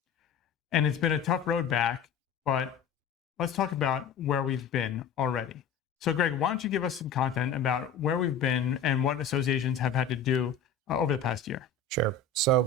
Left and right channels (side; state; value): right; quieter; 5.2 dB